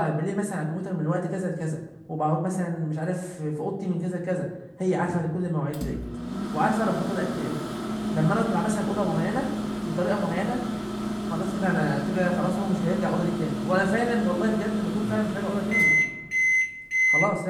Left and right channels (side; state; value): both; identical; correlation 1.00